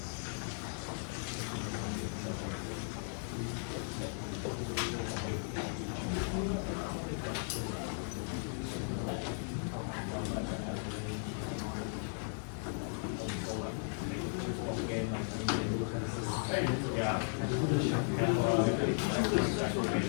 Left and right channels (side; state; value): right; silent; 53 dB below the other